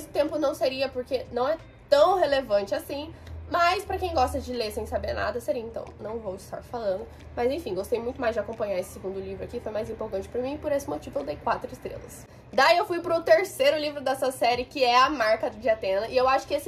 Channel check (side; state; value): both; identical; correlation 1.00